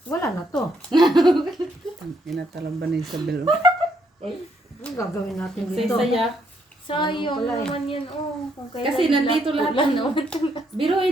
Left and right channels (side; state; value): both; normal; correlation 0.73